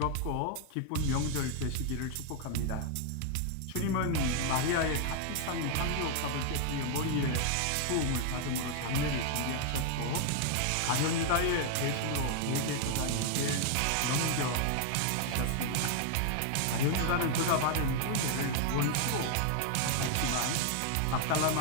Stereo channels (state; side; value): different; both; correlation 0.00